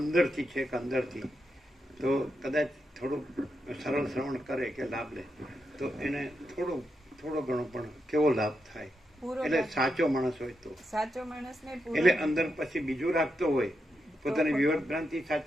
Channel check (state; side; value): normal; both; correlation 0.84